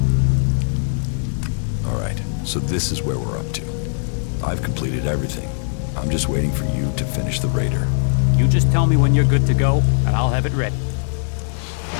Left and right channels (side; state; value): right; silent; digital silence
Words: Alright, so this is where we're up to. I've completed everything. I'm just waiting for you to finish the raider. You just tell me when you're good to go, and I'll have it ready.